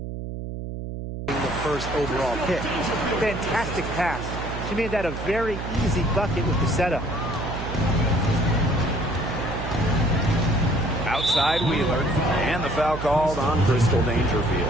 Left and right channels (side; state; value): right; noise; hum, 7 dB below the sound